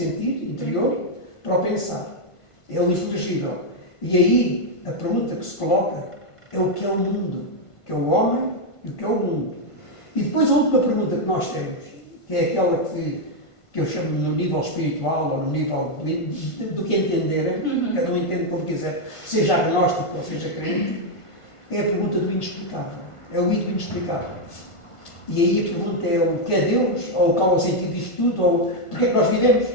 interior para o pensar. É o inteligível. E aí a pergunta que se coloca é o que é o mundo, o que é o homem e o que é o mundo. E depois a última pergunta que nós temos, que é aquela que eu chamo no nível espiritual ou no nível do que entenderem, cada um entende como quiser, seja agnóstico ou seja crente, é a pergunta do inexplicável. É o I do inexplicável. E aí a pergunta é o que é Deus, ou qual é o sentido disto tudo, ou porque é que nós vivemos.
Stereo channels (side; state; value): right; late; 1.5 ms